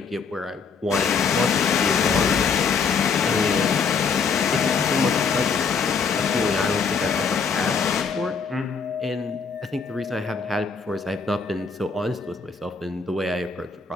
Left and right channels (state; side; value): quieter; right; 5.5 dB